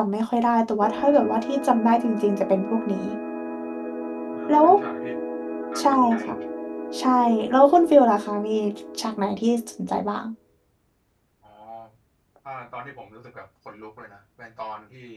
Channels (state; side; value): identical; both; correlation 1.00